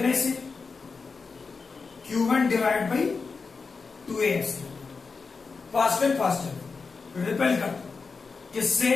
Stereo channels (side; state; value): right; quieter; 4.7 dB